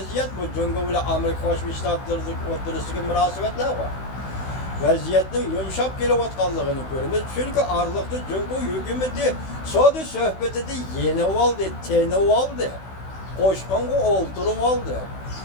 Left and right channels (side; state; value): right; late; 16 ms